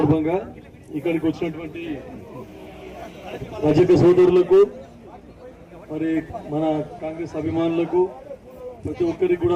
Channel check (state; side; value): identical; both; correlation 1.00